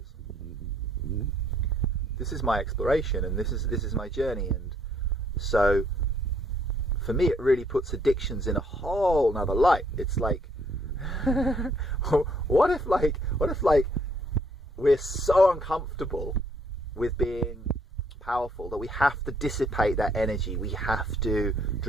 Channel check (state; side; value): normal; both; correlation 0.67